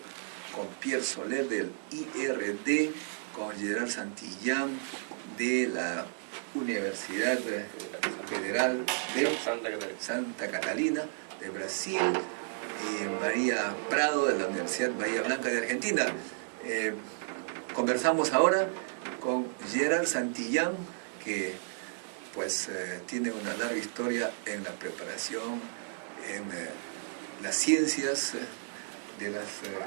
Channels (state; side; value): silent; left; 56 dB below the other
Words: con Pierre Soler del IRD, con Gerard Santillán de la Universidad Federal de Santa Catalina de Brasil, y María Prado de la Universidad Bahía Blanca de Argentina. Conversamos ahora con Gerard Santillán, que pues tiene una larga historia en la preparación, en las ciencias de los